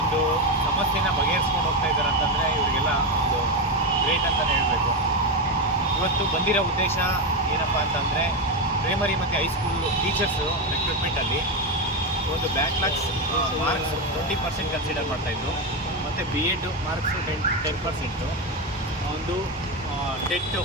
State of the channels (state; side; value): normal; both; correlation 0.11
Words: ಸಮಸ್ಯೆನ ಬಗೆಹರಿಸ್ಕೊಂಡು ಹೋಗ್ತಾ ಇದ್ದಾರೆ ಅಂತಂದರೆ ಇವರಿಗೆಲ್ಲ ಒಂದು ಗ್ರೇಟ್ ಅಂತಲೇ ಹೇಳಬೇಕು. ಇವತ್ತು ಬಂದಿರೋ ಉದ್ದೇಶ ಏನಪ್ಪ ಅಂತಂದರೆ ಪ್ರೈಮರಿ ಮತ್ತು ಹೈಸ್ಕೂಲ್ ಟೀಚರ್ಸು ರಿಕ್ರೂಟ್ಮೆಂಟಲ್ಲಿ ಒಂದು ಬ್ಯಾಕ್ಲಾಗ್ಸ್ ಮಾರ್ಕ್ಸ್ 20% ಕನ್ಸಿಡರ್ ಮಾಡ್ತಾಯಿದ್ರು. ಮತ್ತು BEd ಮಾರ್ಕ್ಸು 10%, ಒಂದು ಟೆಟ್ಟು